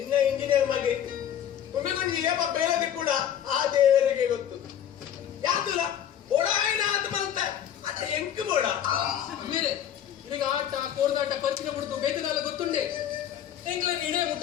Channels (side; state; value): right; quieter; 9.8 dB